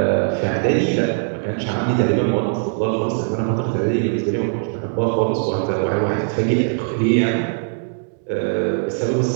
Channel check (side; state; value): left; silent; digital silence